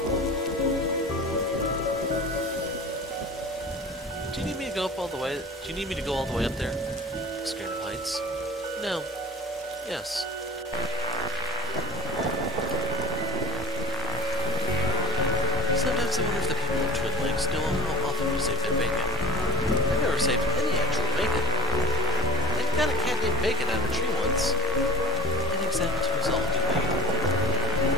Do you need me to go up all the way? Do you need me to go all the way up there? Scared of heights? No. Yes. Sometimes I wonder if the people of Twin Lakes know how often we save their bacon. I've never saved any actual bacon. I got a cat named Bacon out of a tree once. Any examples to resolve, do we?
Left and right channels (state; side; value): normal; both; correlation 0.31